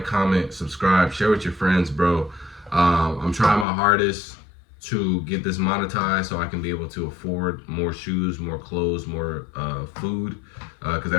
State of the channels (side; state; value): right; drops out; at 3.7 s